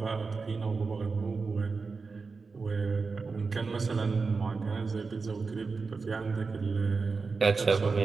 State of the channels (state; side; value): quieter; left; 4.5 dB